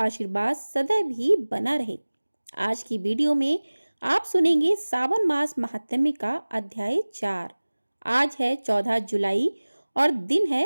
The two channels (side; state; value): both; inverted; correlation -1.00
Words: आशीर्वाद सदैव ही बना रहे। आज की वीडियो में आप सुनेंगे सावन मास महात्म्य का अध्याय 4। आज है 14 जुलाई और दिन